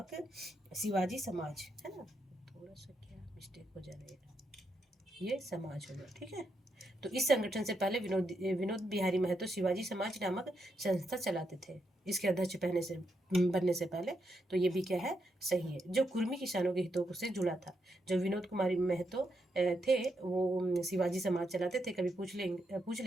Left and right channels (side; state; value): both; normal; correlation 0.81